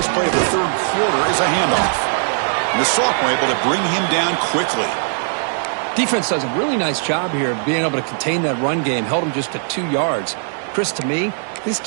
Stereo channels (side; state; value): left; silent; digital silence